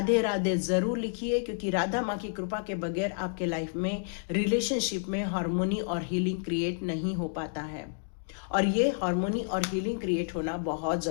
राधे ज़रूर लिखिए, क्योंकि राधा माँ की कृपा के बगैर आपके लाइफ में, रिलेशनशिप में हार्मोनी और हीलिंग क्रिएट नहीं हो पाता है। और ये हार्मोनी और हीलिंग क्रिएट होना बहुत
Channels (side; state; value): right; silent; digital silence